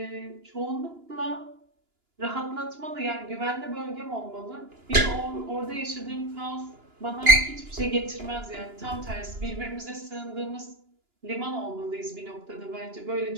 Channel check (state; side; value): late; left; 2.9 ms